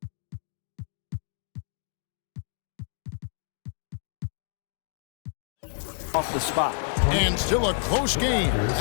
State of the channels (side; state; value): right; silent; digital silence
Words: Off the spot. And still a close game